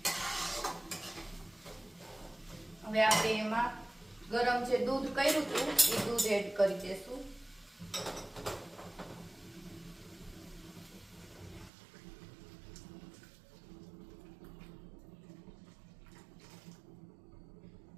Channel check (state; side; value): drops out; left; at 11.7 s